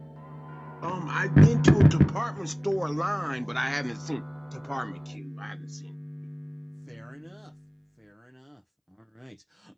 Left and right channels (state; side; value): identical; both; correlation 1.00